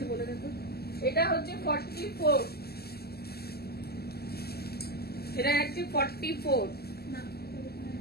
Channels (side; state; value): right; late; 0.46 ms